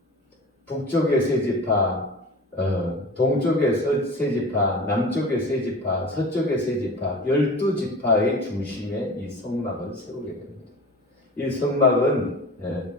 북쪽의 세 지파, 동쪽의 세 지파, 남쪽의 세 지파, 서쪽의 세 지파, 12지파의 중심에 이 성막을 세우게 됩니다. 이 성막은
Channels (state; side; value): normal; both; correlation 0.36